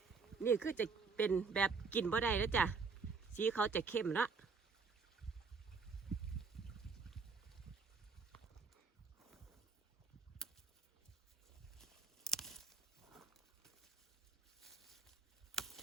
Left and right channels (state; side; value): quieter; left; 4.9 dB